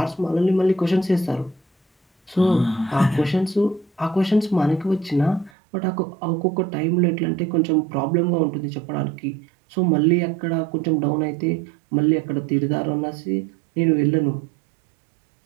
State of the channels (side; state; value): left; drops out; at 5.5 s